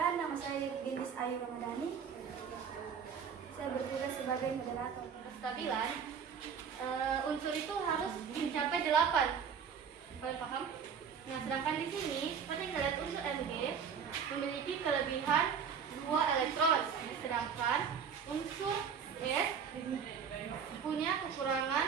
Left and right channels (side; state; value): left; quieter; 6.9 dB